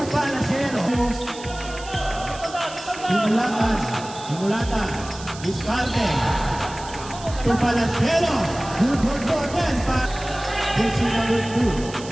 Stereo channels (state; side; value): noise; right; hiss, 15 dB below the sound